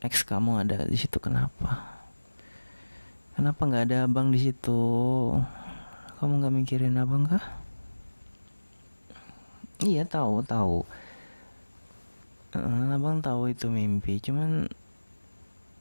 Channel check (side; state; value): both; inverted; correlation -1.00